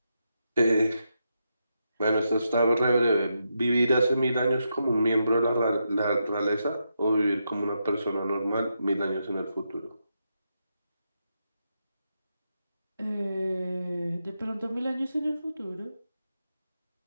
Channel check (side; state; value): both; inverted; correlation -0.84